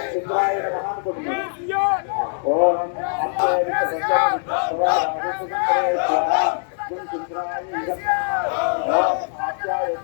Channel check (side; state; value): right; silent; digital silence